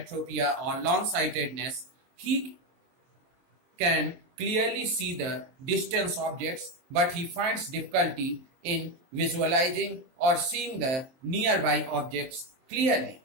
or long-sightedness, he can clearly see the distance objects, but he finds difficulty in visualizing or seeing the nearby objects clearly.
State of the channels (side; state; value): left; late; 23 ms